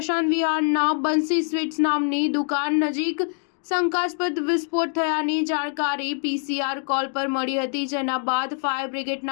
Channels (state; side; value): silent; right; 60 dB below the other